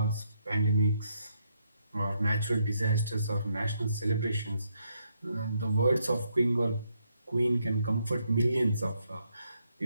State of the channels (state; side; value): inverted; both; correlation -0.76